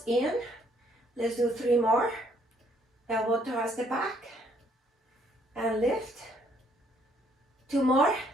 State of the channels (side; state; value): both; normal; correlation 0.67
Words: in. Let's do 3 more. Elbow towards the back. And lift. 2 more.